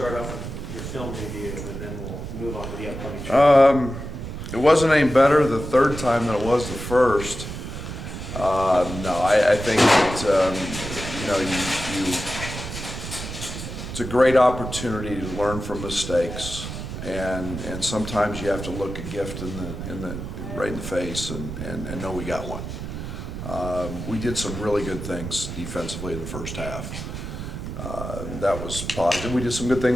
off with your film review, and then we'll move on to the upcoming show. It wasn't any better the third time than it was the first. No, I think that, it's a great opportunity to learn from mistakes, and sometimes you have to look a gift right in the face and know we got one. We did some really good things defensively in the first half. That was positive. We did some good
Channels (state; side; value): noise; right; rumble, 7 dB below the sound